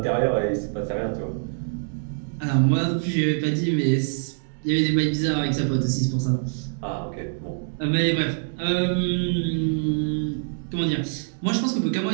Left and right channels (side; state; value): left; silent; digital silence